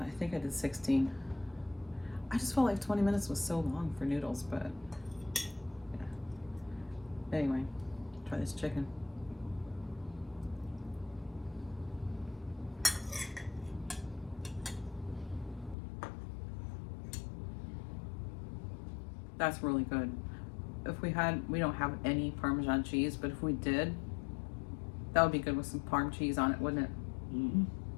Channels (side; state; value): right; drops out; at 15.8 s